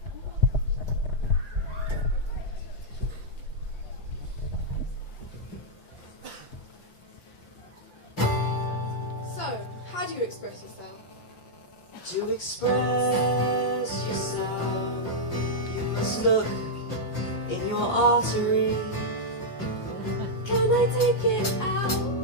How do you express yourself? To express yourself, you must look in your artery. Can I take it out?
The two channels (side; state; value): right; late; 5.8 ms